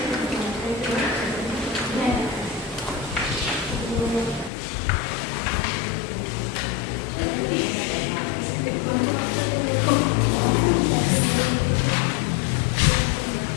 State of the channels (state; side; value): drops out; right; at 4.5 s